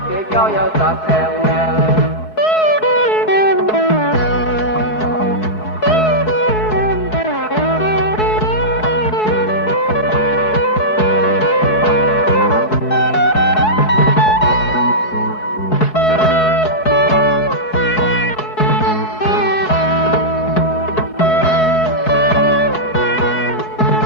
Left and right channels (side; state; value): right; late; 4.7 ms